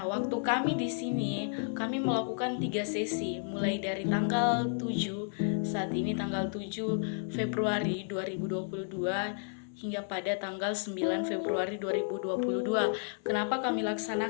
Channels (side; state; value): right; silent; 56 dB below the other